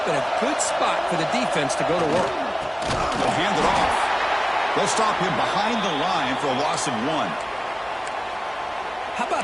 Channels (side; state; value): both; identical; correlation 1.00